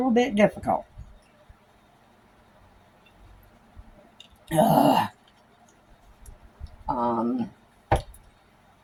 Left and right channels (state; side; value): identical; both; correlation 1.00